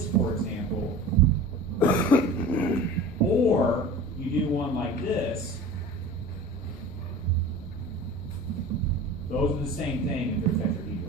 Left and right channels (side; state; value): both; normal; correlation 0.38